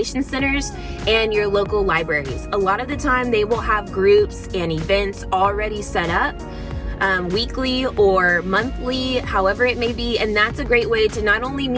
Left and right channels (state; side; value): identical; both; correlation 1.00